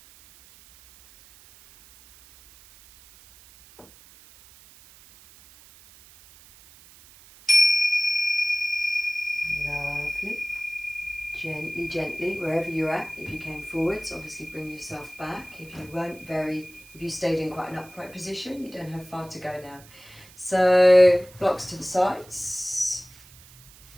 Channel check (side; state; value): right; noise; hiss, 23 dB below the sound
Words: Gently, gently, wherever you're at. If you came forwards, obviously bring yourself back. If you stayed in quite an upright position, you don't have far to go now. So, blocks to the sides,